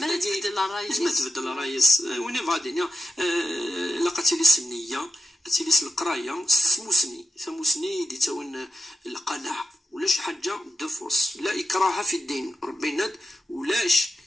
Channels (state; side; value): normal; both; correlation 0.88